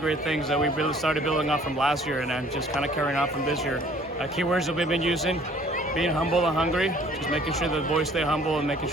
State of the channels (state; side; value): normal; both; correlation 0.55